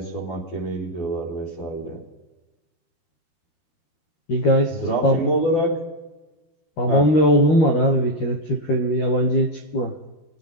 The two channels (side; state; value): right; late; 13 ms